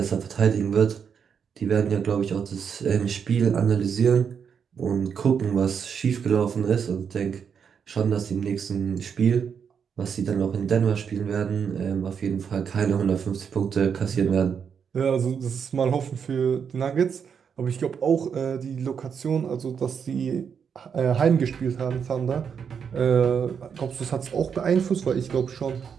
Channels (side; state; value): left; quieter; 7.0 dB